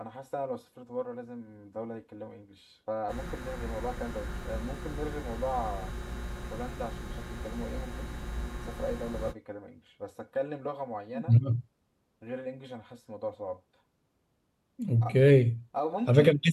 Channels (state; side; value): identical; both; correlation 1.00